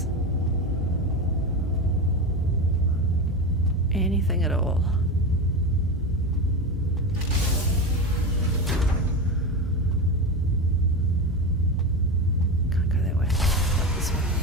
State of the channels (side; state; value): both; normal; correlation 0.21